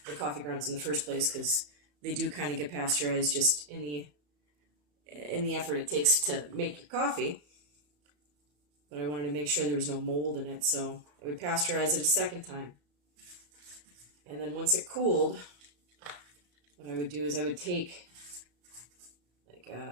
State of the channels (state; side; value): late; left; 34 ms